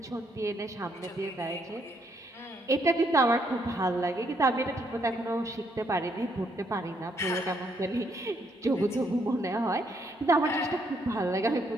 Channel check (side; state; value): both; normal; correlation 0.73